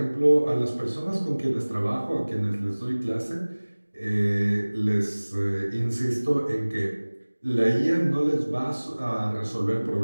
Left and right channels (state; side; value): inverted; both; correlation -1.00